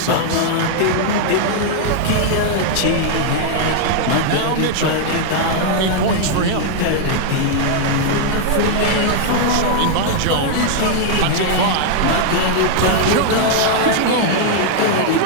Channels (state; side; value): different; both; correlation -0.01